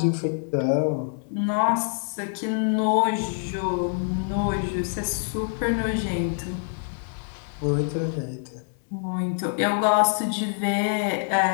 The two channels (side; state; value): right; silent; digital silence